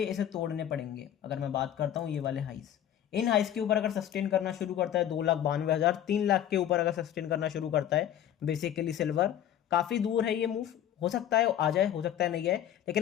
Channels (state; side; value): quieter; right; 10.7 dB